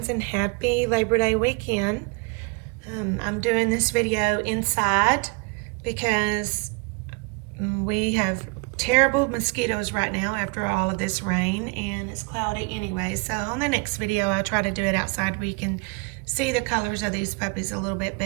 and happy Labor Day weekend. I'm doing this video inside because we have terrible mosquitoes right now after all of this rain, and it's cloudy anyway. So on the next video, I'll try to do it outside where you can see the colors of these puppies a little bit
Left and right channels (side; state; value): left; quieter; 30.4 dB